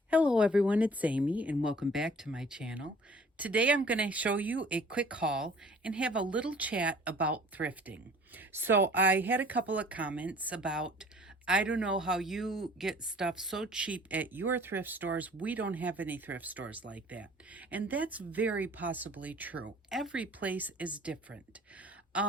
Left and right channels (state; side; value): normal; both; correlation 0.51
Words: Hello everyone, it's Amy and welcome back to my channel. Today I'm going to show you a quick haul and have a little chat about thrifting. So I had a couple of comments about, I don't know how you get stuff so cheap at your thrift stores. We don't have any thrift stores like that. And that's very possibly true. Every place is different.